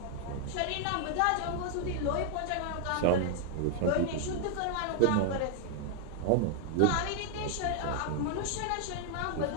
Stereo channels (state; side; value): different; both; correlation 0.00